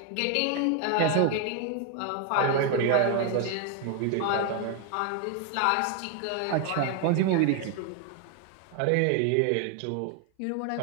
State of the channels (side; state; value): both; different; correlation 0.01